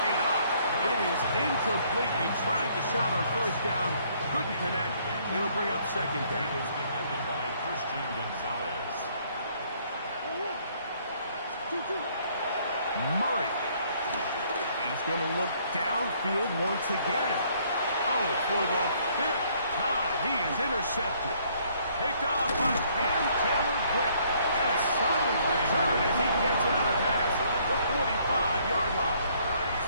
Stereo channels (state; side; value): inverted; both; correlation -0.64